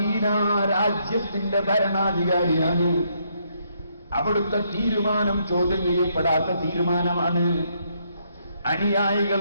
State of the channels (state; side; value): inverted; both; correlation -0.73